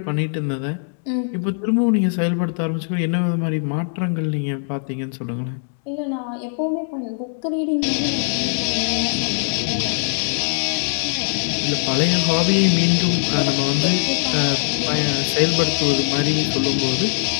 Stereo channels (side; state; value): right; silent; digital silence